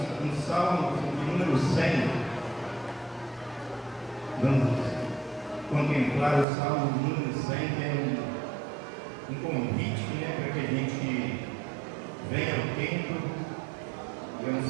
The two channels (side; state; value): left; drops out; at 6.5 s